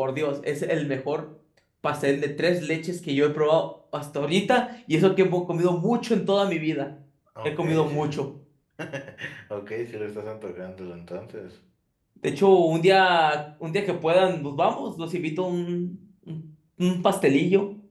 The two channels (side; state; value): both; identical; correlation 1.00